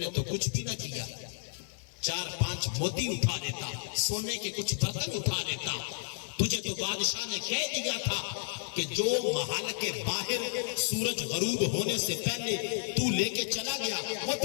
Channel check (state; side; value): silent; right; digital silence